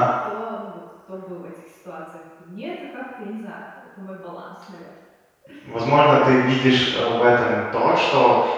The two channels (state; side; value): identical; both; correlation 1.00